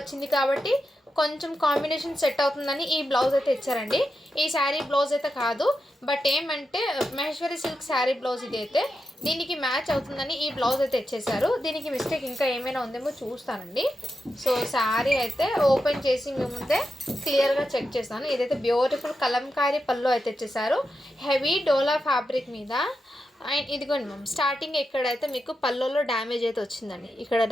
కాబట్టి కొంచెం కాంబినేషన్ సెట్ అవుతుందని ఈ బ్లౌజ్ అయితే ఇచ్చారండి. ఈ శారీ బ్లౌజ్ అయితే కాదు, బట్ ఏమంటే మహేశ్వరి సిల్క్ శారీ బ్లౌజ్ ఇది అయితే దీనికి మ్యాచ్ అవుతుందని ఈ బ్లౌజ్ అయితే ఇచ్చేసారు. దీనికి మిస్టేక్ ఇంకా ఏమైనా ఉందేమో చూస్తానండి. సో శారీ అయితే ఓపెన్ చేసి మీ ముందే క్లియర్గా చెక్ చేస్తాను. ఇదైతే బ్యూటిఫుల్ కలంకారీ పళ్ళు అయితే ఇచ్చేసారు. హెవీ డోలా ఫ్యాబ్రిక్ మీద. అండ్ ఇదిగోండి మ్యామ్, స్టార్టింగ్ ఎక్కడైతే మీకు పళ్ళులో డ్యామేజ్ అయితే వచ్చిందండి. ఇక్కడ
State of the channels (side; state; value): both; normal; correlation 0.88